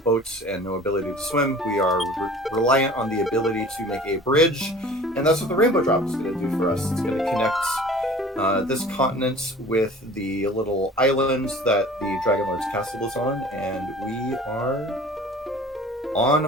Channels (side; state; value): both; normal; correlation 0.44